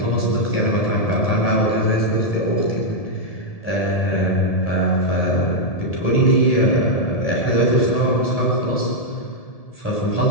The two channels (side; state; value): right; late; 1.7 ms